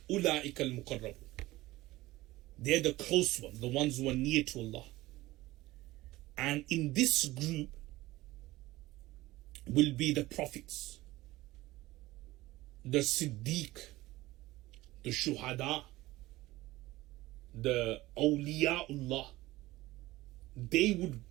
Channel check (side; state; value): left; quieter; 18.2 dB